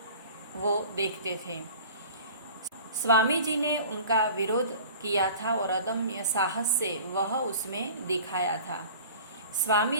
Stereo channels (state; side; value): inverted; both; correlation -0.42